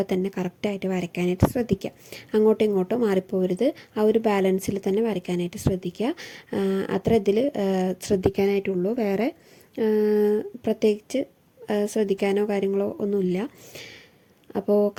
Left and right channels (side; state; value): both; identical; correlation 1.00